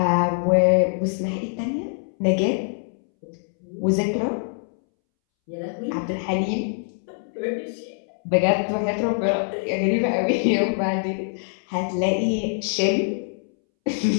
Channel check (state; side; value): silent; right; 63 dB below the other